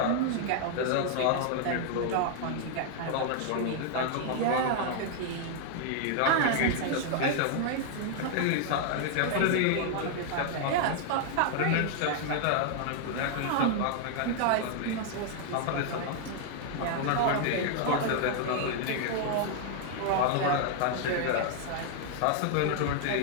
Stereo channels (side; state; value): both; different; correlation 0.00